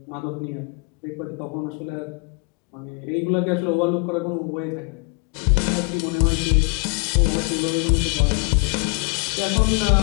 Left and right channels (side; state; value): right; quieter; 32.9 dB